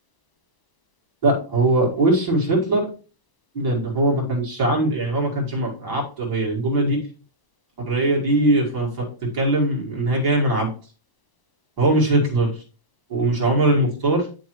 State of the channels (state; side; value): late; right; 1.0 ms